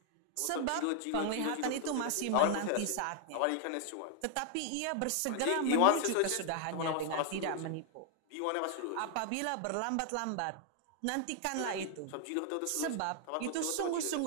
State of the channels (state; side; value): different; both; correlation 0.00